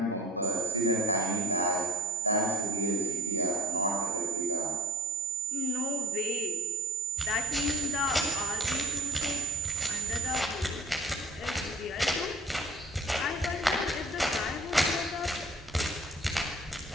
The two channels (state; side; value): normal; both; correlation 0.50